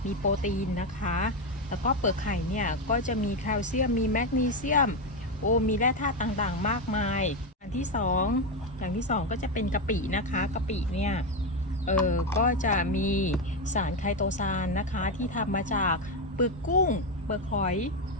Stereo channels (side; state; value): both; normal; correlation 0.09